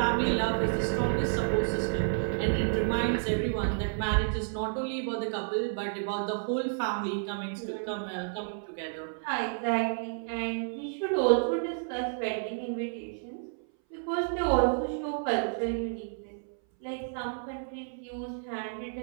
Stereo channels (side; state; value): left; silent; 57 dB below the other